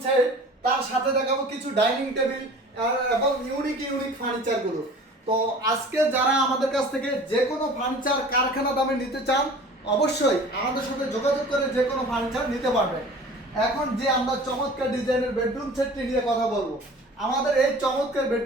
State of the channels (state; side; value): normal; both; correlation 0.43